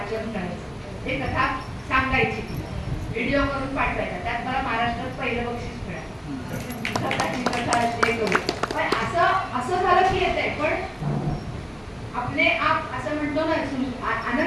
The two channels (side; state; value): both; identical; correlation 1.00